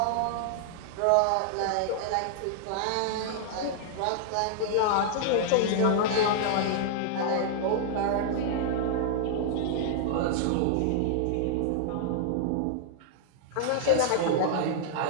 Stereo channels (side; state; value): both; different; correlation -0.01